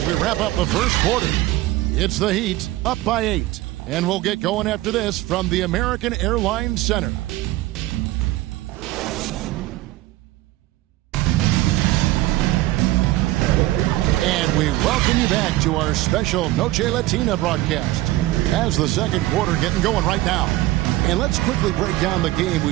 we wrap up the first quarter. It's the Heat up by 8. And we'll get going after this from the American Airlines Center. We welcome you back to our special Noche Latina broadcast as the second quarter getting going right now. And let's quickly break down the game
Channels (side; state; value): left; quieter; 17.4 dB